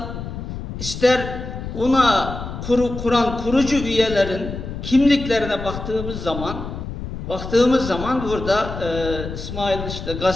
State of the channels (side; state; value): left; noise; rumble, 8 dB below the sound